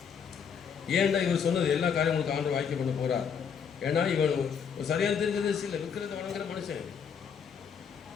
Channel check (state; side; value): quieter; right; 7.0 dB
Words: ஏன்னா இவர் சொன்னது எல்லா காரியங்களுக்கு ஆண்டு வாய்க்க பண்ண போகிறார். ஏன்னா இவன் சரியான தெரிஞ்சது இல்லை, விற்கிறத வணங்குற மனுஷன்.